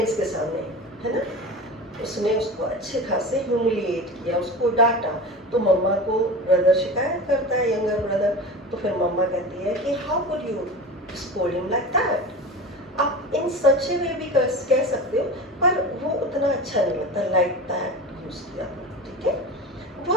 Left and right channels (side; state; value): both; normal; correlation 0.30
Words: के सामने, है ना, उसने उसको अच्छे खासे ह्यूमिलिएट किया, उसको डांटा। तो मम्मा को ब्रदर शिकायत करता है, यंगर ब्रदर, तो फिर मम्मा कहती है कि how could you scold him like that? आप इन सच वे भी कह सकते हो, पर वो उतना अच्छा नहीं लगता, लाइक दैट यूज किया, ठीक है। वो